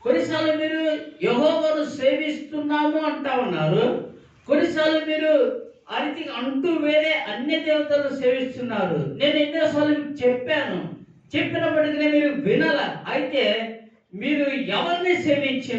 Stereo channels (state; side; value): identical; both; correlation 1.00